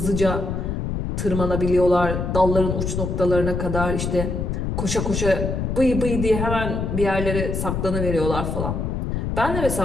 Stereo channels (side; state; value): left; noise; rumble, 2 dB below the sound